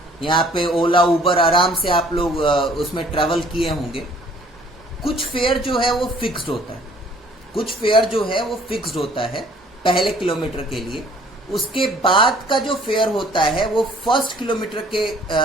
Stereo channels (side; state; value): both; normal; correlation 0.57